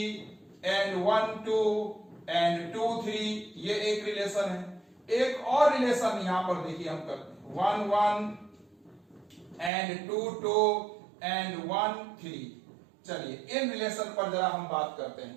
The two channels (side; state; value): left; drops out; at 9.7 s